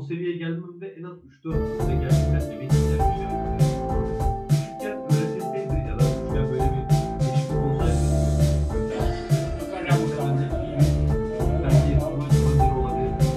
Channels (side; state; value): both; identical; correlation 1.00